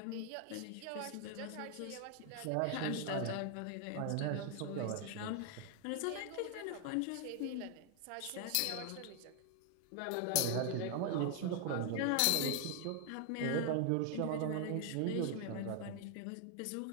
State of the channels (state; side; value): different; both; correlation 0.00